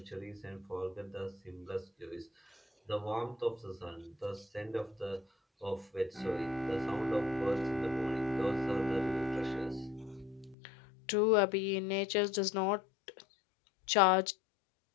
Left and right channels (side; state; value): right; drops out; at 10.6 s